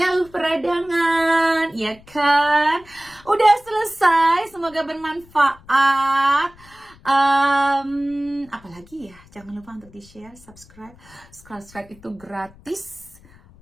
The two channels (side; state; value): left; noise; rumble, 25 dB below the sound